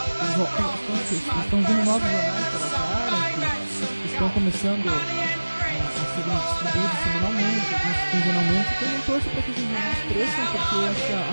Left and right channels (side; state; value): both; inverted; correlation -1.00